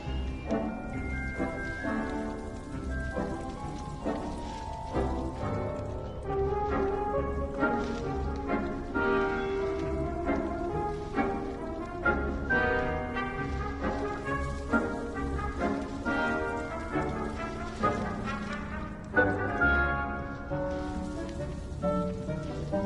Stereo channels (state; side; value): identical; both; correlation 1.00